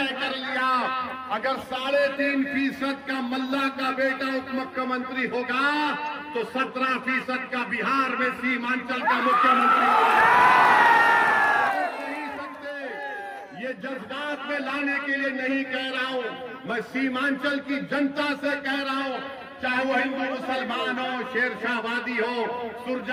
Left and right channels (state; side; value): identical; both; correlation 1.00